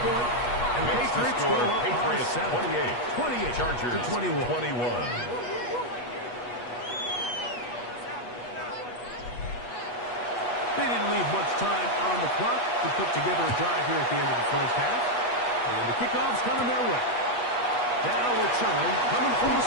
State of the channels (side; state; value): right; late; 8.3 ms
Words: point. And Makes the Patriots score go up by Patriots 7. 28. 28 Chargers to 21. 21. They didn't leave much time on the clock to put together a drive here at the end of the first half. And the kickoff's coming their way. Now return coming from the